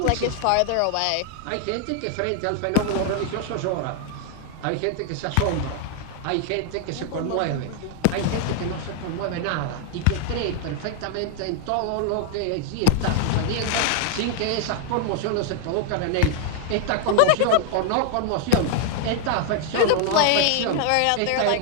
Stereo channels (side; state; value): both; different; correlation 0.00